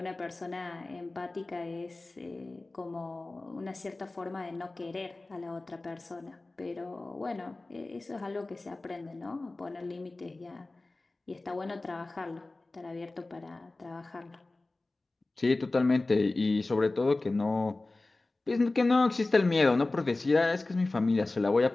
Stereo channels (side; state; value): right; quieter; 3.1 dB